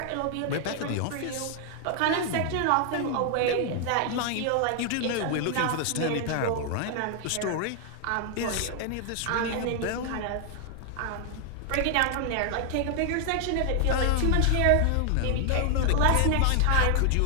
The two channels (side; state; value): both; different; correlation 0.00